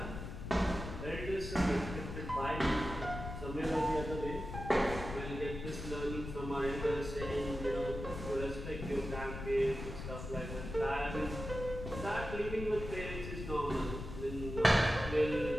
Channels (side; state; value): left; noise; rumble, 8 dB below the sound